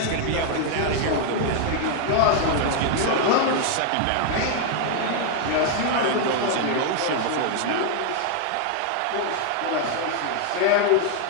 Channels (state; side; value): different; both; correlation 0.00